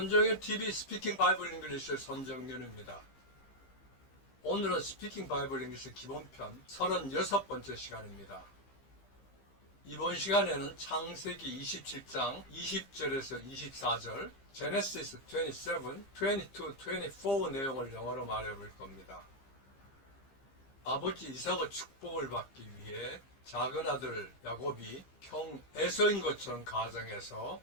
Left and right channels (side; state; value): right; late; 15 ms